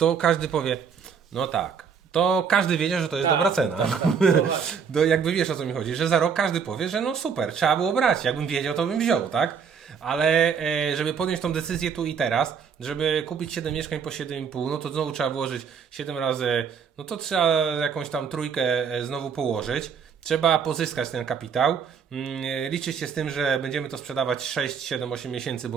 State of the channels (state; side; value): quieter; left; 6.6 dB